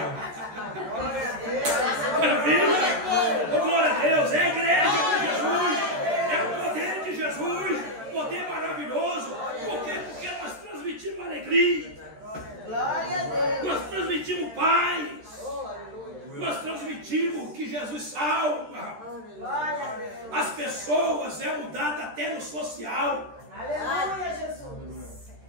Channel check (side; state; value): left; late; 13 ms